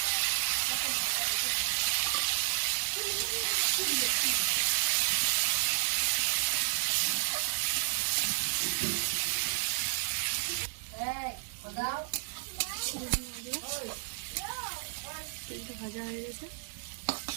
তেলটা ভাজা হয়ে গেছে,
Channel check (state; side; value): silent; left; digital silence